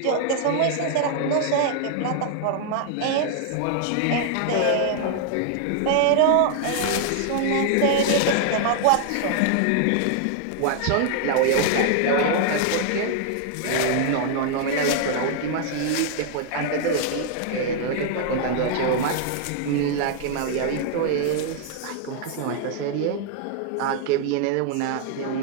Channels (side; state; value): both; different; correlation 0.00